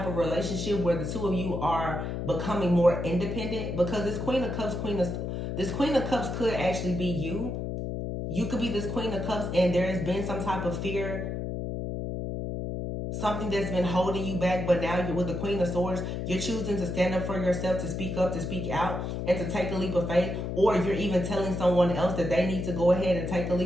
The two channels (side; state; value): left; noise; hum, 3 dB below the sound